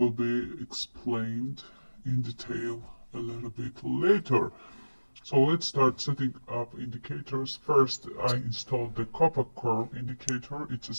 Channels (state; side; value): inverted; both; correlation -1.00